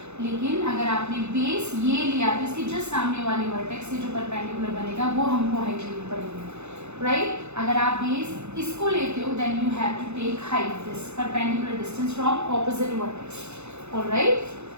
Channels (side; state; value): left; late; 0.81 ms